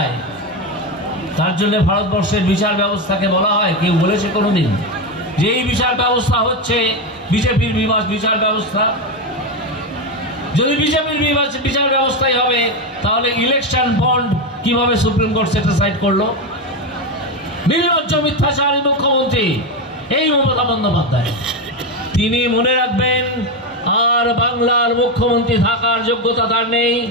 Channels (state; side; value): normal; both; correlation 0.12